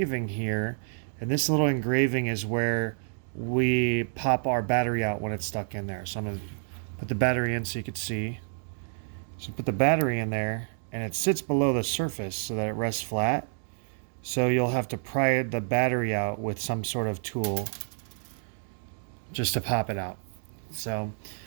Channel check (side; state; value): left; silent; digital silence